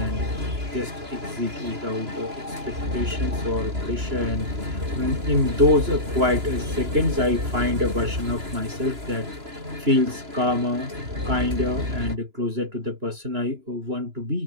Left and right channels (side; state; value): left; late; 2.9 ms